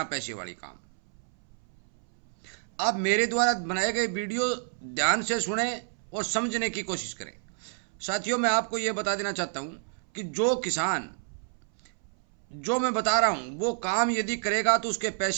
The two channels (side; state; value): left; silent; 59 dB below the other